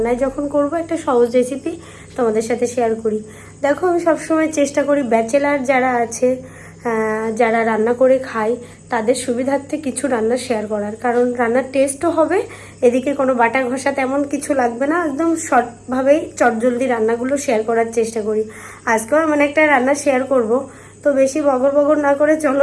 যখন করব একটা সহজ রেসিপি তোমাদের সাথে শেয়ার করি। দেখো, আমি সবসময় চেষ্টা করি ব্যাচেলার যারা আছে, যারা রান্না করে খায় তাদের সুবিধার্থে কিছু রান্না শেয়ার করার, কারণ রান্নার টেস্টও হবে, এদিকে কোনো বাটা ঘষা তেমন কিছু লাগবে না, একদম শর্টভাবেই চটজলদি রান্নাগুলো শেয়ার করার চেষ্টা করি। আজকেও এমন একটা রান্না শেয়ার করব, তো বেশি বগর বগর না করে চলো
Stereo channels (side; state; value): both; identical; correlation 1.00